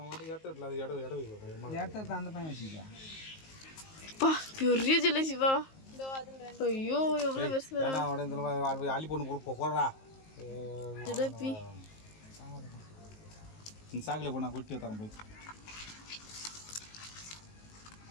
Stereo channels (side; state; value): right; late; 19 ms